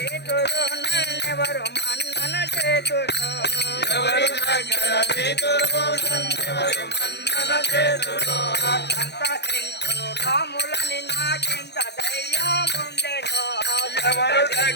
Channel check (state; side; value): late; right; 0.49 ms